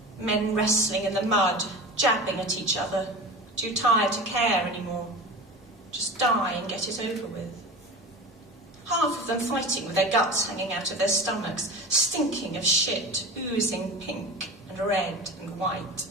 Men wrestling in the mud, jabbing at each other, too tired to care anymore. Just die and get it over with. Half of them fighting with their guts hanging out of their stomachs, stinking of shit, oozing pink and red and white.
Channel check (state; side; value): normal; both; correlation 0.31